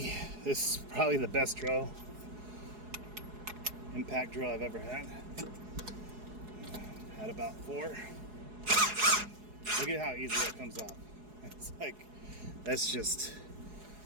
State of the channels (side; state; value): left; late; 4.8 ms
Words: This is probably the best drill, impact drill I've ever had. Had about 4. Look at how easy that comes off. It's like, that's just,